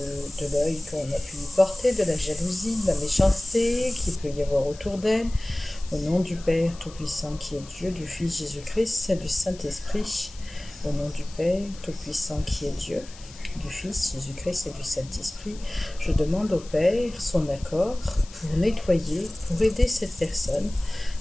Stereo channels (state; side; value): noise; left; hiss, 19 dB below the sound